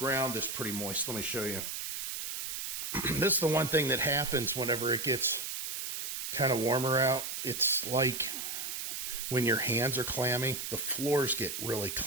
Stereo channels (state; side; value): noise; right; hiss, 4 dB below the sound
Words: is pretty moist. Let me show you. This is the one thing that happens whenever it gets kind of warmer out. It's like when your hands are clammy, the floors get really